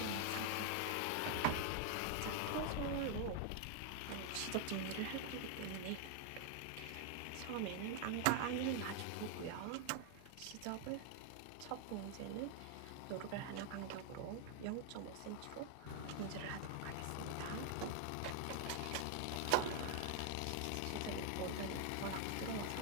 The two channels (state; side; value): different; both; correlation 0.00